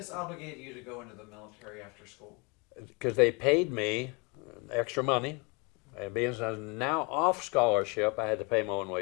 obligated you to go into the military after school? Because they paid me extra money, and being now off scholarship, I had to pay my own way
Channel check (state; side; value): quieter; right; 30.2 dB